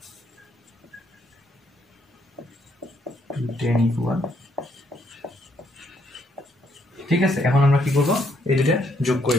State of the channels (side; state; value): both; normal; correlation 0.72